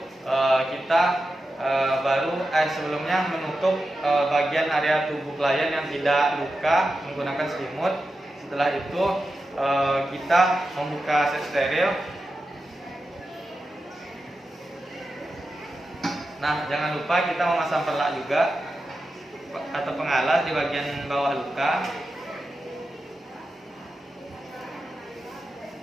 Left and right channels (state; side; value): normal; both; correlation 0.91